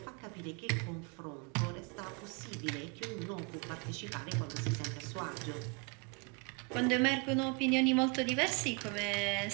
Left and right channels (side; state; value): left; quieter; 32.1 dB